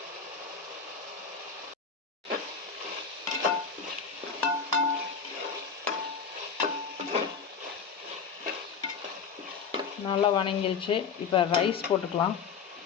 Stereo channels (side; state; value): right; quieter; 6.0 dB